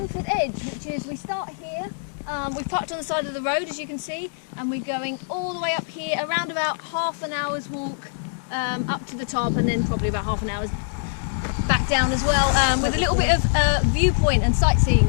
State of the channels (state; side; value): silent; right; digital silence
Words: Edge, which is, we start here. We've parked on the side of the road, as you can see, and we're going all the way up here, around about half an hour's walk up to the top, and then probably about half an hour's back down as well, with a little bit of viewpoint and